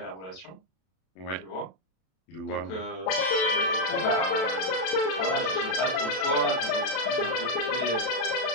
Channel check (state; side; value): late; right; 32 ms